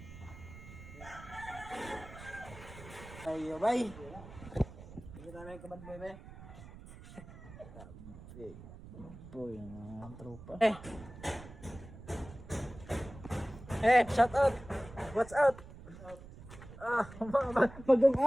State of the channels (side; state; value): right; noise; rumble, 16 dB below the sound